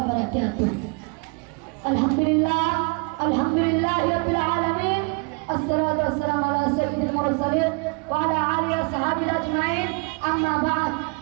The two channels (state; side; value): quieter; left; 32.8 dB